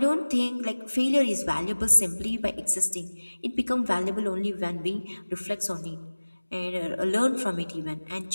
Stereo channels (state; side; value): inverted; both; correlation -1.00